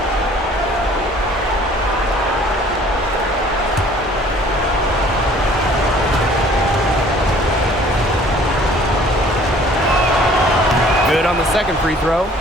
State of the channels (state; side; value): normal; both; correlation 0.54